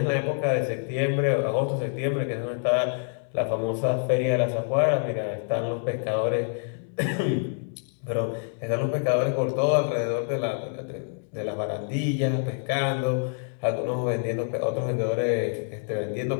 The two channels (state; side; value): silent; right; 60 dB below the other